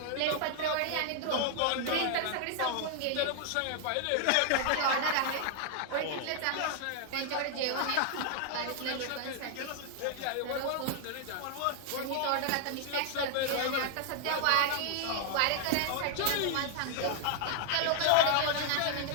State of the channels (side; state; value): both; different; correlation 0.00